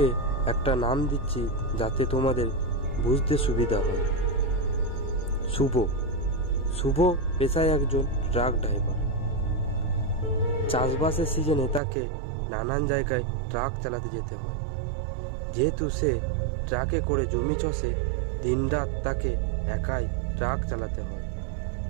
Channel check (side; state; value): left; drops out; at 11.8 s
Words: একটা নাম দিচ্ছি যাতে তোমাদের বুঝতে সুবিধা হয়। শুভ। শুভ পেশায় একজন ট্রাক ড্রাইভার। চাষবাসের সিজনে তাকে নানান জায়গায় ট্রাক চালাতে যেতে হয়। যেহেতু সে ট্রাকে করে জমি চষে, দিনরাত তাকে একাই ট্রাক চালাতে হয়।